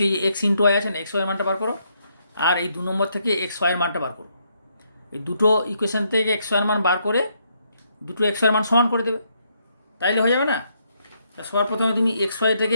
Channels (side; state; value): both; inverted; correlation -0.75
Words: এই এক্স ইন্টু ওয়াই আছে না, এক্স ওয়াইয়ের মানটা বার করো। আর এই 2 নম্বর থেকে এক্স ওয়াইয়ের মানটা বার করো। এই দুটো ইকুয়েশন থেকে এক্স ওয়াইয়ের মান বার করে দুটো এক্স ওয়াইয়ের মান সমান করে দেবে, তাইলে হয়ে যাবে না? সবার প্রথমে তুমি এক্স ওয়াই